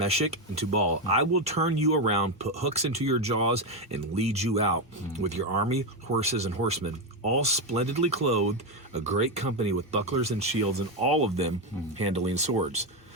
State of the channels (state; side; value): normal; both; correlation 0.09